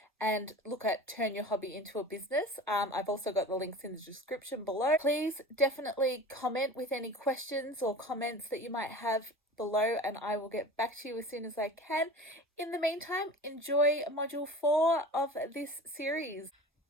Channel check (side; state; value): both; normal; correlation 0.37